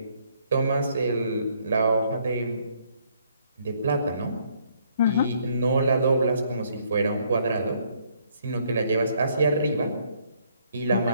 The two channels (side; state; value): both; inverted; correlation -0.68